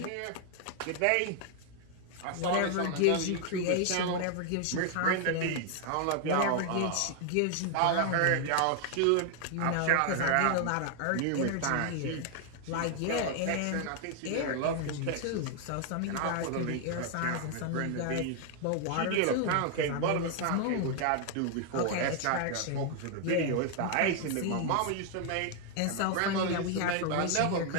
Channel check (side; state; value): both; different; correlation 0.00